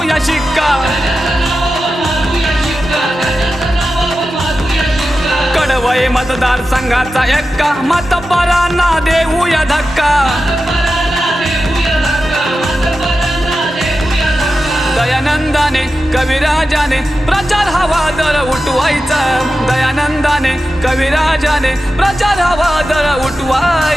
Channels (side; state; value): both; normal; correlation 0.92